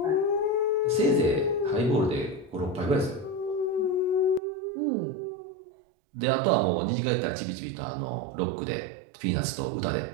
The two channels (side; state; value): left; drops out; at 4.4 s